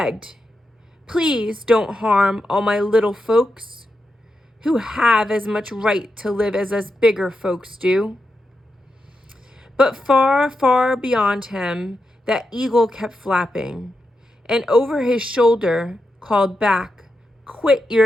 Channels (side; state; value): both; normal; correlation 0.87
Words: Please don't harm all my little folks, who have as much right to live as us bigger folks do. But far, far beyond him, that eagle kept flapping, and over his shoulder called back, Quit